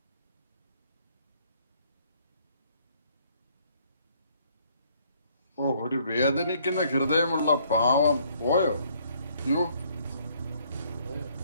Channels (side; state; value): both; inverted; correlation -0.65